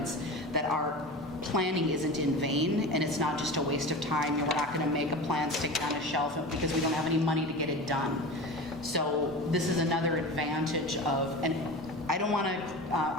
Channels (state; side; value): normal; both; correlation 0.31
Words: that our planning isn't in vain and it's not just a waste of time. We're not going to make a plan, stick it on a shelf because we don't have any money to get it done. So this is another advantage of, and I